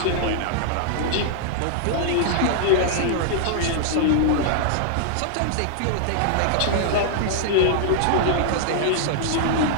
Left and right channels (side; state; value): both; different; correlation -0.01